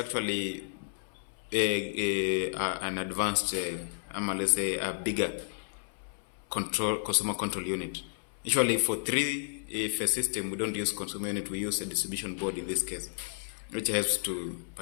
an advanced, let's say a bigger consumer control unit. Usually for 3-phase system, we don't use consumer unit, we use a distribution board in this case, which helps to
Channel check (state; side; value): silent; right; 57 dB below the other